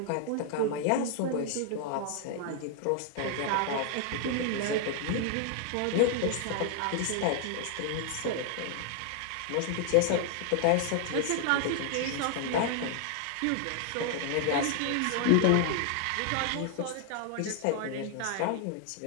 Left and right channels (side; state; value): both; different; correlation 0.00